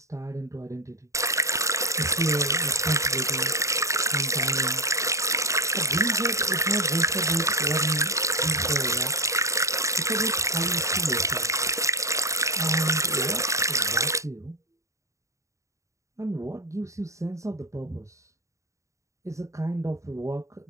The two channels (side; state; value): left; late; 0.15 ms